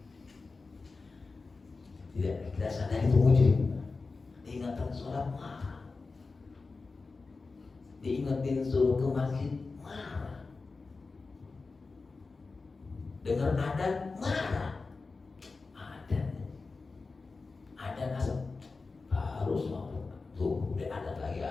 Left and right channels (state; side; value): quieter; right; 4.0 dB